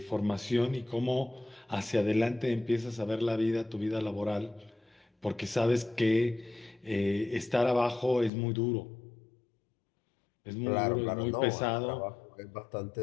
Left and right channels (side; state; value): right; drops out; at 8.3 s